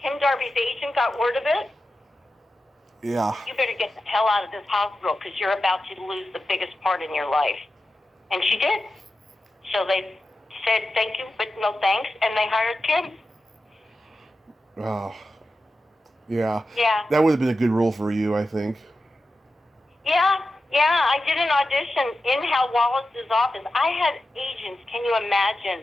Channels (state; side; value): normal; both; correlation 0.92